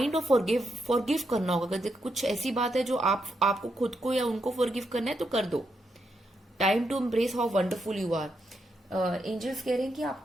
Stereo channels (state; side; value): normal; both; correlation 0.81